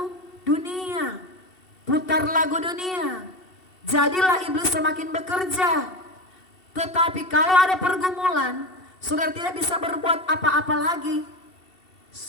dunia, putar lagu dunia. Jadilah iblis semakin bekerja. Tetapi kalau ada pergumulan, saudara tidak bisa berbuat apa-apa lagi.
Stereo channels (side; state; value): right; late; 2.7 ms